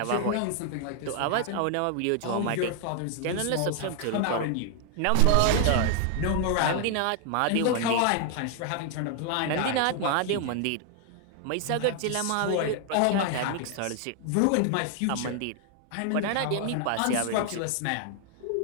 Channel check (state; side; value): different; both; correlation 0.00